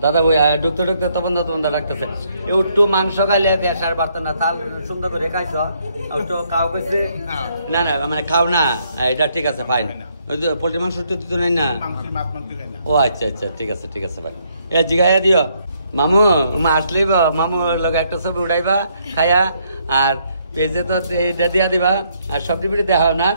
দাদা বই ঢুকতে তপনদার রাখতেছে একটু মাংস খাইলে পেশার বাড়তো না তাল সুন্দর করে খাইছ একটু খাও কইছে না মানে খাও না এটা ঠিক আছে ফাইন ওই তো পোল্ট্রি মাংস তো নাই না ও আচ্ছা ঠিক আছে ভাই এ জিগাইয়া দিও মামু আসলেই মামু লগে একটা ছবি উঠাইবা খায়া আর পেজে তো এইটা দিয়া দিবা আর সবজি পিঠে দেখা না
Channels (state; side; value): inverted; both; correlation -0.72